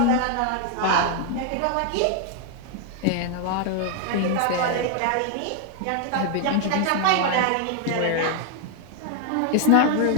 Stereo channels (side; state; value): both; different; correlation 0.00